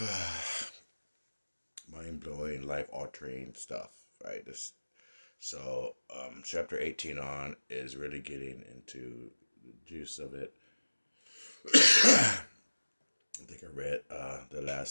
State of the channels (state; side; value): inverted; both; correlation -1.00